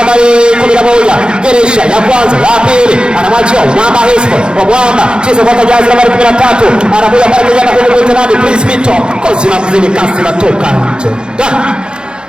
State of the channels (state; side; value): late; left; 0.049 ms